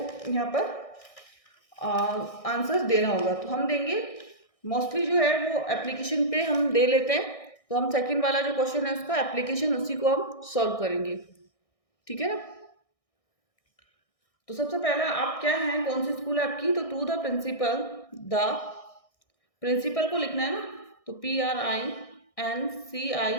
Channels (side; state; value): right; late; 1.6 ms